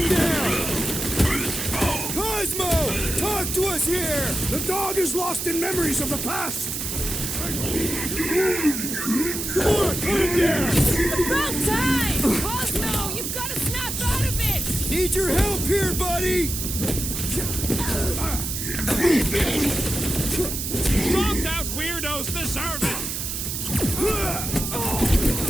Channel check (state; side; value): noise; right; hiss, 4 dB below the sound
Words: down! Cosmo! Talk to us here! The dog is lost in memories of the past. Come on, put him down! About time! Cosmo, you've got to snap out of it! Need your help here, buddy! Dropped out weirdos deserve it!